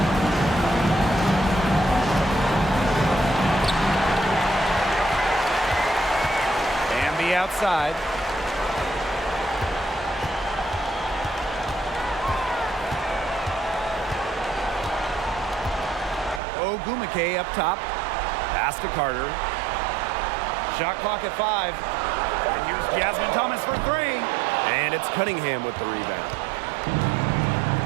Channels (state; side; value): drops out; left; at 16.4 s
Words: And the outside. Ogumake up top. Pass to Carter. Shot clock at 5. And here's Jasmine Thomas for 3. And it's Cunningham with the rebound.